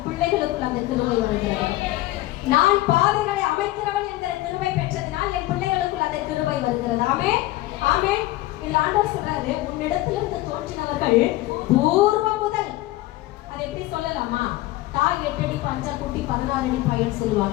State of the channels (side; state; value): right; quieter; 17.4 dB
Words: பிள்ளைகளுக்குள் அந்த கிருபை வருகிறது. நான் பாதைகளை அமைக்கிறவள் என்கிற கிருபை பெற்றதினால் என் பிள்ளைகளுக்குள் அந்த கிருபை வருகிறது. ஆமென், ஆமென். இந்த ஆண்டவர் சொல்றாரு, உன்னிடத்திலிருந்து தோன்றினவர்கள் பூர்வ முதல். அதை எப்படி சொல்லலாமா? தாய் 8 அடி பஞ்சா குட்டி 16 அடி பையன்